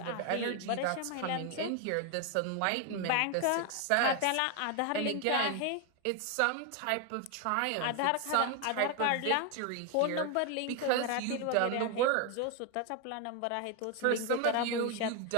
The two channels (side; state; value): both; different; correlation 0.01